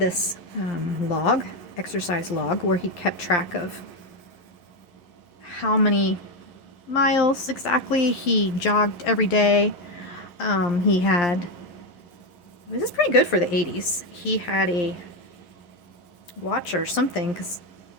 exercise log, where he kept track of how many miles exactly he jogged every day. He had, this is pretty good for the 80s. He had a watch or something, because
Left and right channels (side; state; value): right; late; 11 ms